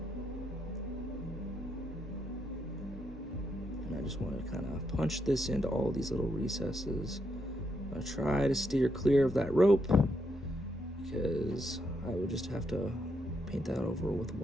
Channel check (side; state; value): both; normal; correlation 0.79